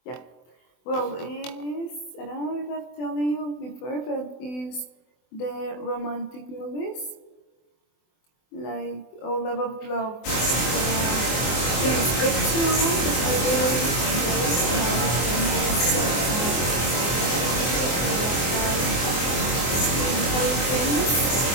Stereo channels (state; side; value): late; right; 24 ms